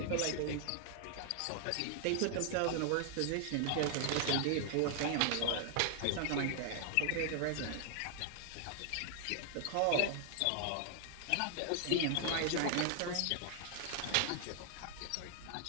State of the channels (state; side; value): different; both; correlation 0.00